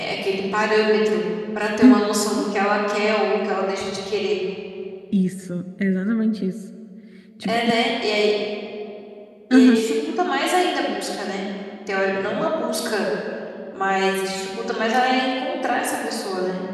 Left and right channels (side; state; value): both; identical; correlation 1.00